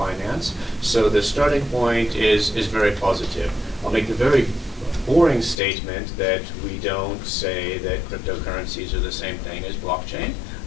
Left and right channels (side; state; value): right; drops out; at 5.6 s